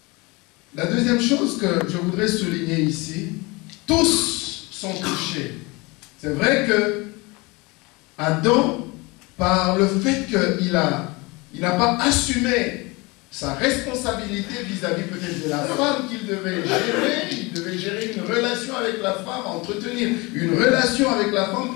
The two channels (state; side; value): quieter; right; 25.3 dB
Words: La deuxième chose que je voudrais souligner ici, tous sont touchés. C'est vrai que Adam, par le fait qu'il n'a pas assumé sa responsabilité vis-à-vis peut-être de la femme qu'il devait gérer, il devait gérer une relation avec la femme, entretenir une relation avec la femme,